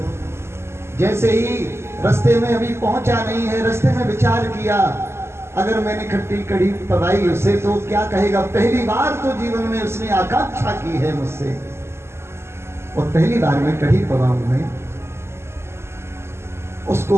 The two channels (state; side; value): late; left; 0.12 ms